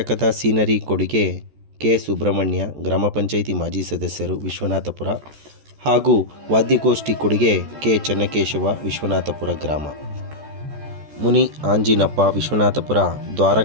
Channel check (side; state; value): left; late; 14 ms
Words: ಸೀನರಿ ಕೊಡುಗೆ ಕೆ. ಸುಬ್ರಹ್ಮಣ್ಯ, ಗ್ರಾಮ ಪಂಚಾಯಿತಿ ಮಾಜಿ ಸದಸ್ಯರು, ವಿಶ್ವನಾಥಪುರ ಹಾಗೂ ವಾದ್ಯಗೋಷ್ಠಿ ಕೊಡುಗೆ ಕೆ. ಚೆನ್ನಕೇಶವ, ವಿಶ್ವನಾಥಪುರ ಗ್ರಾಮ. ಮುನಿ ಆಂಜಿನಪ್ಪ, ವಿಶ್ವನಾಥಪುರ,